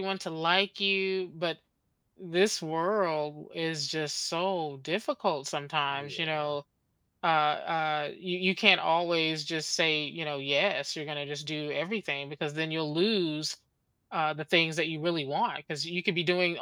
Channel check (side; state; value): both; identical; correlation 1.00